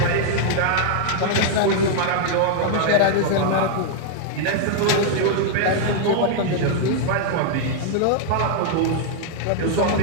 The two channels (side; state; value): both; different; correlation -0.01